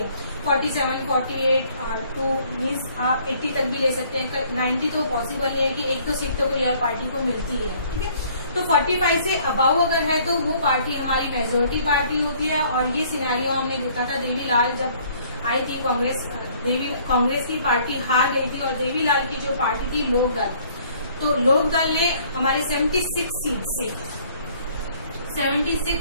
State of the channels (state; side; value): inverted; both; correlation -0.59